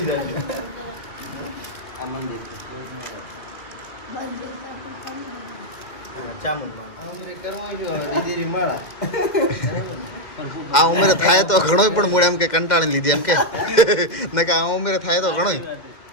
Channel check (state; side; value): late; right; 2.1 ms